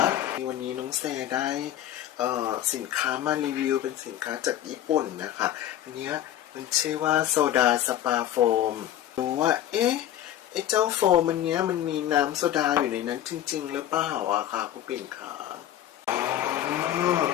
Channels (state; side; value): quieter; right; 11.9 dB